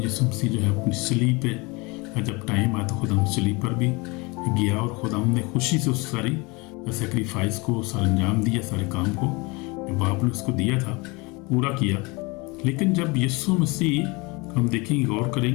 मसीह जो है अपनी सलीब पे, जब टाइम आया तो खुदा सलीब पर भी गया, और खुदा ने खुशी से उस सारी सेक्रीफाइस को सारा अंजाम दिया, सारे काम को जो बाप ने उसको दिया था पूरा किया। लेकिन जब यीशु मसीह, हम देखेंगे, गौर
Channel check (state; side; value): quieter; right; 26.6 dB